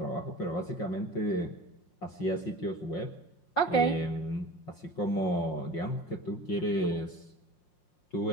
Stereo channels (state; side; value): late; right; 5.6 ms